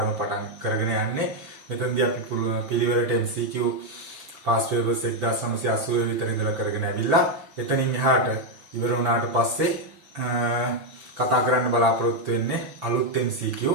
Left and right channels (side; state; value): left; late; 6.0 ms